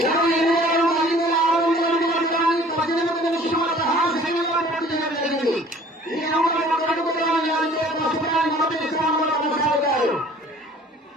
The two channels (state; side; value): normal; both; correlation 0.51